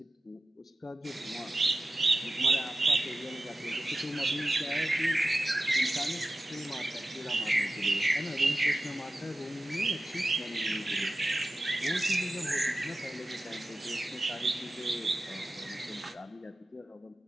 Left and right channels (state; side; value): normal; both; correlation 0.94